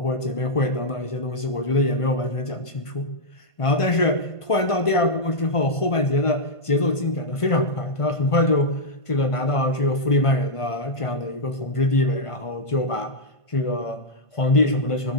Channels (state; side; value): late; right; 1.5 ms